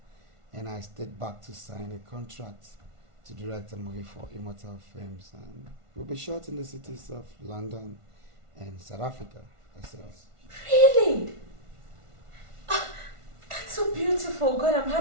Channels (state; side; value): late; left; 1.4 ms